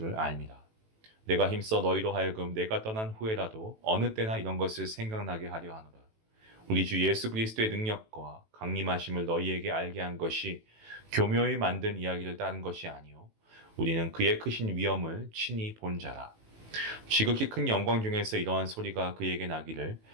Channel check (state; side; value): late; left; 18 ms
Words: 압니다. 내가 힘써 너희로 하여금 내가 떠난 후에라도 어느 때나 이런 것을 생각나게 하려 하노라. 우리 주 예수 그리스도의 능력과 강림하심을 너희에게 알게 한 것이 교묘히 만든 이야기를 따른 것이 아니요 우리는 그의 크신 위엄을 친히 본 자라. 지극히 큰 영광 중에서 이러한 소리가 그에게 나기를